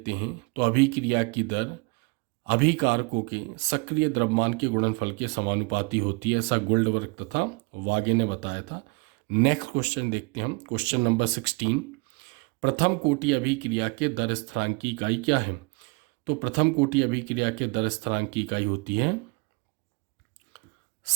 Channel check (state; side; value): quieter; left; 28.6 dB